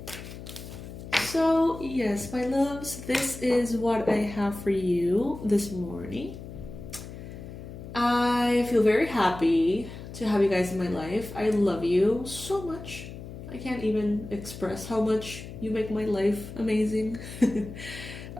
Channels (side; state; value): left; noise; hum, 12 dB below the sound